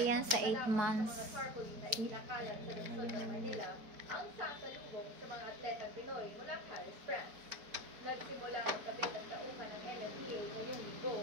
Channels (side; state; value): left; late; 4.7 ms